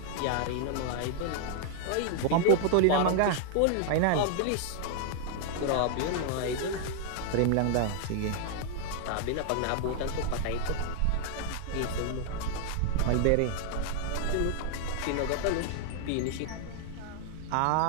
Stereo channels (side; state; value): both; different; correlation 0.00